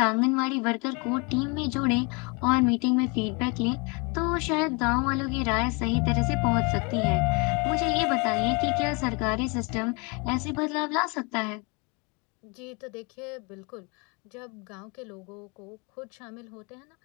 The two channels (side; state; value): right; quieter; 30.7 dB